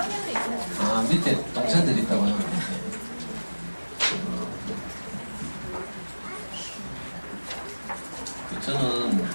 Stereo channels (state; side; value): inverted; both; correlation -1.00